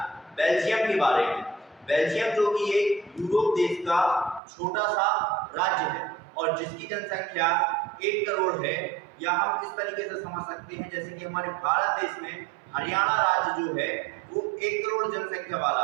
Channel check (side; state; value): left; drops out; at 4.4 s